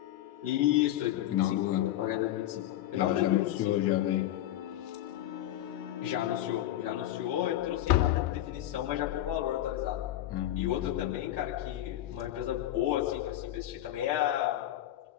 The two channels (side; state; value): right; quieter; 13.4 dB